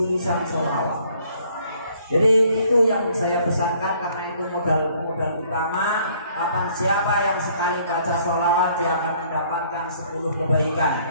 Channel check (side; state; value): both; inverted; correlation -0.62